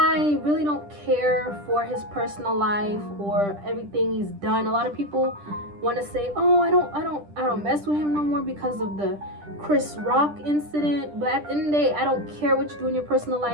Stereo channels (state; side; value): late; left; 10 ms